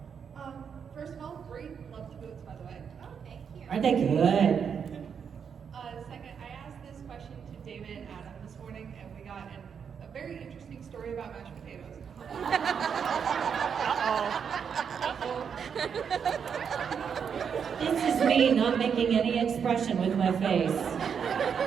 First of all, great. Love the boots, by the way. Oh, thank you. Aren't they good? Second, I asked this question to David and Adam this morning, and we got a very interesting story about mashed potatoes. This is me not making any expression with my face.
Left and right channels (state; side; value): quieter; left; 7.0 dB